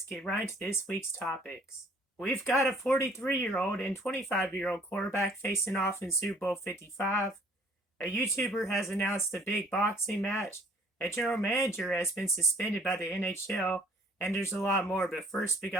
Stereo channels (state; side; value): normal; both; correlation 0.57